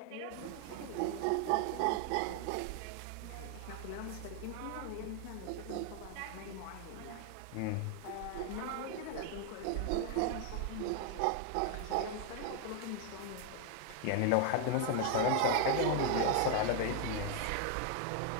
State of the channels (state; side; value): different; both; correlation 0.00